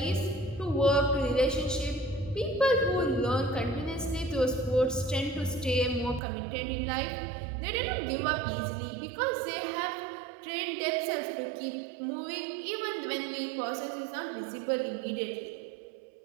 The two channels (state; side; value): drops out; left; at 6.2 s